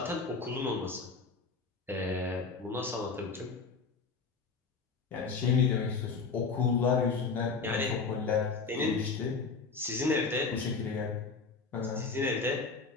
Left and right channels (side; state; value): right; quieter; 4.7 dB